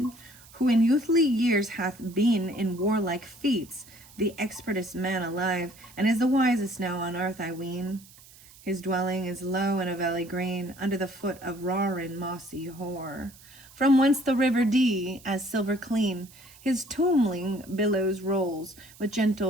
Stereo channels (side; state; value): right; noise; hiss, 23 dB below the sound